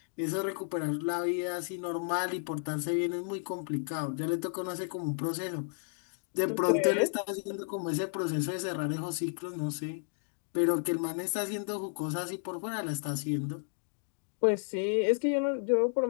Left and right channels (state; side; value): silent; right; digital silence